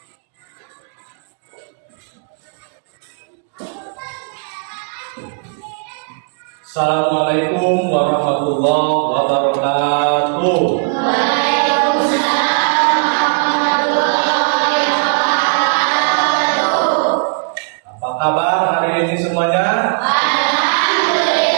Assalamualaikum warahmatullahi wabarakatuh. Waalaikumsalam warahmatullahi wabarakatuh. Apa kabar hari ini semuanya?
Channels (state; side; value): silent; left; digital silence